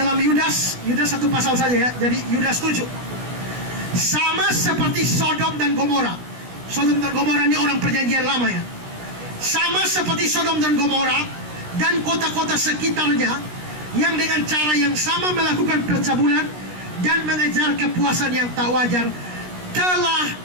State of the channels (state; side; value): late; left; 16 ms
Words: Yudas satu pasal saja ya. Jadi Yudas 7. Sama seperti Sodom dan Gomora. Sodom dan Gomora ini orang perjanjian lama ya. Sama seperti Sodom dan Gomora dan kota-kota sekitarnya yang dengan cara yang sama melakukan percabulan dan mengejar kepuasan yang tak wajar, telah